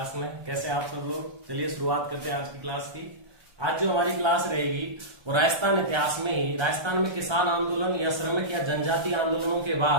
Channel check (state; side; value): late; left; 1.3 ms